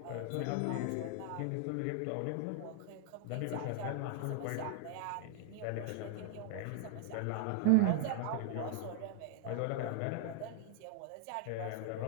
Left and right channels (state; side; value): different; both; correlation 0.00